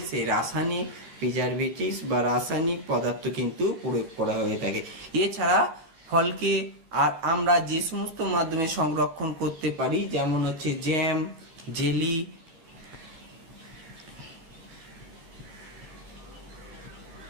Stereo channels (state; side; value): late; left; 13 ms